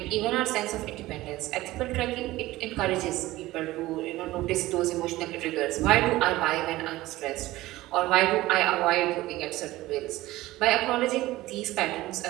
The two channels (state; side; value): quieter; left; 17.6 dB